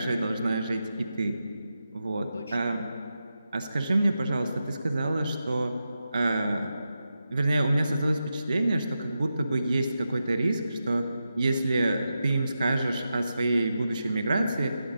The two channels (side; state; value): both; inverted; correlation -0.89